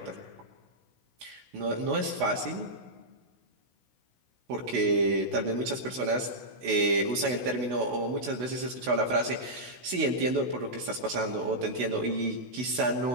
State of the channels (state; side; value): late; left; 16 ms